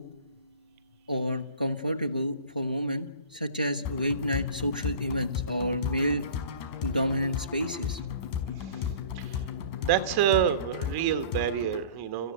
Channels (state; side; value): inverted; both; correlation -0.42